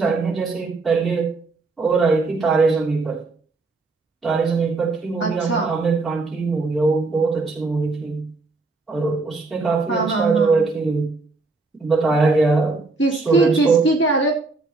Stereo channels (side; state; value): left; quieter; 3.6 dB